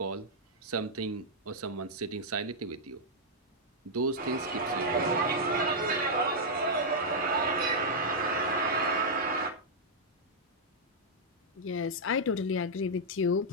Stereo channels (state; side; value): normal; both; correlation -0.07